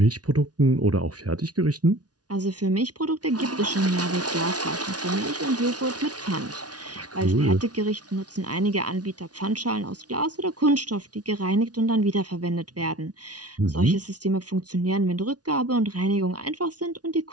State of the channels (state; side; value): late; left; 0.69 ms